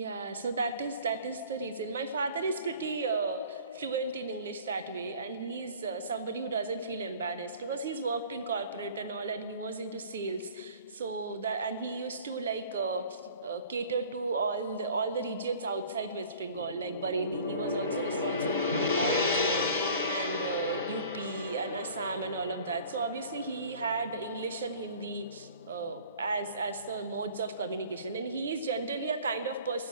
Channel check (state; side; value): inverted; both; correlation -0.48